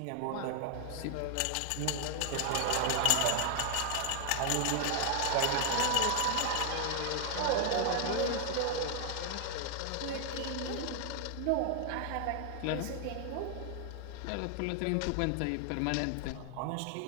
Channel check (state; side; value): different; both; correlation 0.00